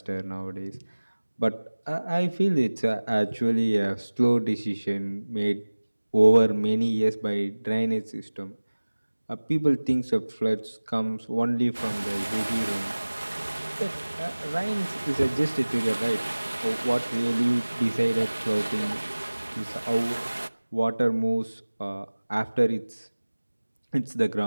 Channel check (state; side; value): inverted; both; correlation -1.00